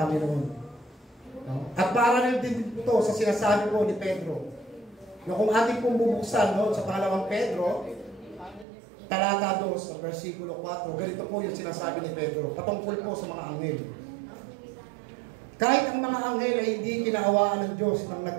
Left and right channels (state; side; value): drops out; left; at 8.7 s